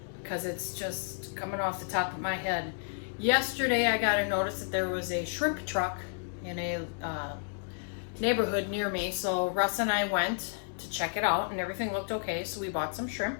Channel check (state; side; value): silent; right; digital silence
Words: because it's just coming off the top of my head. Yesterday I got a notice that there was a shrimp truck in a neighborhood near me, so Russ and I went to check it out and everything looked okay, so we bought some shrimp.